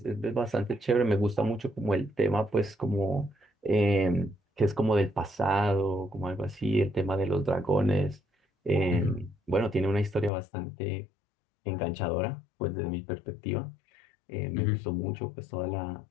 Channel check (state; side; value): drops out; right; at 10.3 s